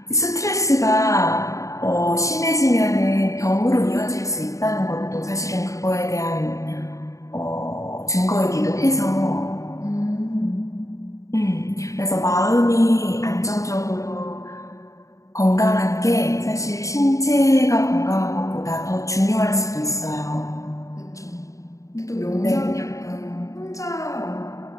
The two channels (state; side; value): late; right; 0.16 ms